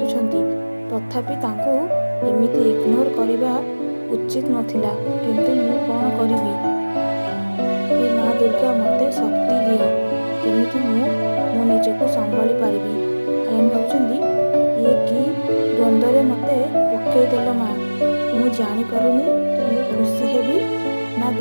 ତଥାପି ତାଙ୍କୁ ଏମିତି ଇଗ୍ନୋର କରିବା ଉଚିତ ନଥିଲା। କିନ୍ତୁ ମୁଁ କ'ଣ କରିବି? ହେ ମା ଦୁର୍ଗା ମୋତେ ଶକ୍ତି ଦିଅ ଯେମିତି ମୁଁ ମୋ ନିଜକୁ ସମ୍ଭାଳି ପାରିବି। ଆୟନ ଭାବୁଛନ୍ତି ଇଏ କି ଦ୍ୱନ୍ଦ୍ୱରେ ମୋତେ ପକେଇଦେଲ ମା। ମୁଁ ଜାଣିପାରୁନି ମୁଁ ଖୁସି ହେବି ନା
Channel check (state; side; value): inverted; both; correlation -1.00